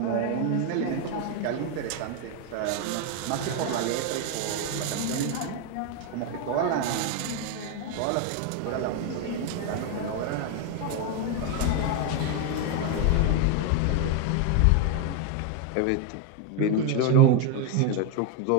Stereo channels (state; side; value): different; both; correlation 0.01